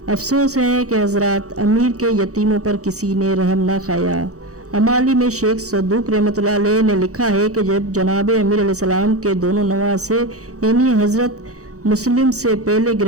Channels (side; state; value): left; late; 0.65 ms